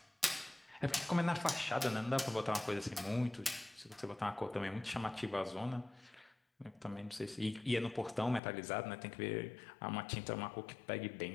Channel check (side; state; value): right; drops out; at 8.4 s